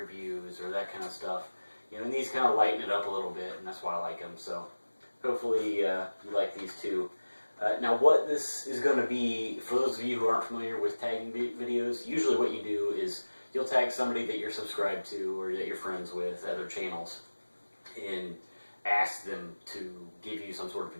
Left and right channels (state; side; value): inverted; both; correlation -1.00